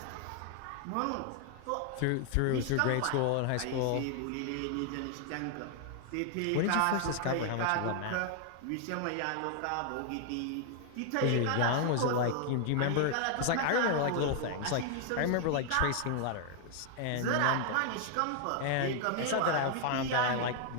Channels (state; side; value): different; both; correlation 0.00